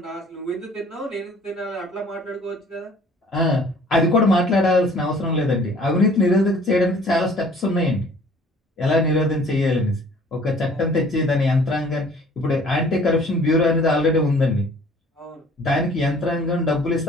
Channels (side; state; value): both; normal; correlation 0.53